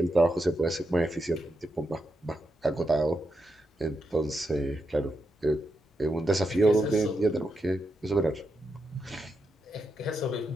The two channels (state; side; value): normal; both; correlation 0.84